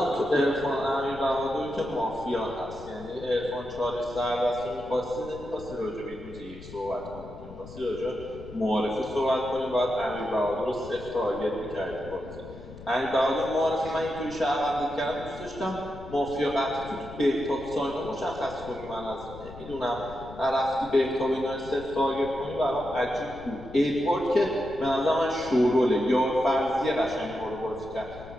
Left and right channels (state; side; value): noise; left; rumble, 15 dB below the sound